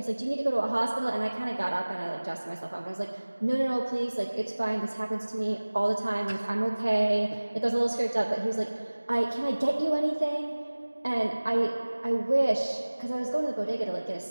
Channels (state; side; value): inverted; both; correlation -1.00